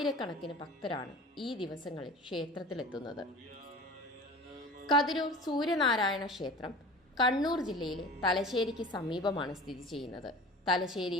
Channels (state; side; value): normal; both; correlation 0.39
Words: ഭക്തരാണ് ഈ ദിവസങ്ങളിൽ ക്ഷേത്രത്തിലെത്തുന്നത്. കതിരൂർ സൂര്യനാരായണ ക്ഷേത്രം കണ്ണൂർ ജില്ലയിലെ തലശ്ശേരിക്ക് സമീപമാണ് സ്ഥിതി ചെയ്യുന്നത്.